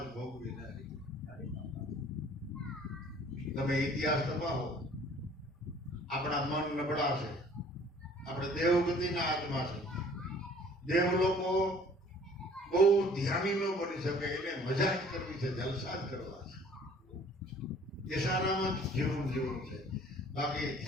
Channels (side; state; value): both; normal; correlation 0.53